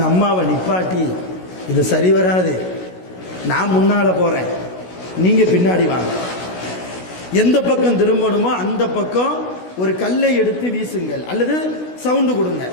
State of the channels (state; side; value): late; right; 16 ms